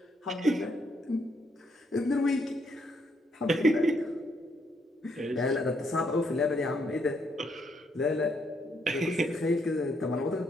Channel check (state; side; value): normal; both; correlation 0.74